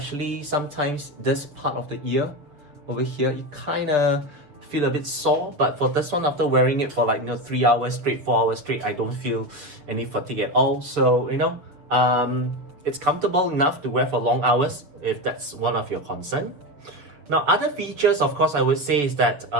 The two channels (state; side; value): late; left; 7.2 ms